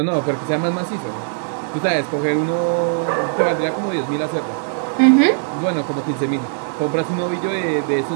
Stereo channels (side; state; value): left; silent; digital silence